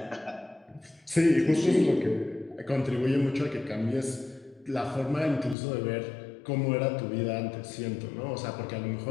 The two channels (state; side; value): drops out; right; at 5.6 s